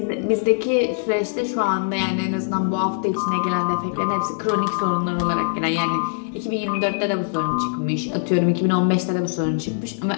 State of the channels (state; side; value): silent; right; digital silence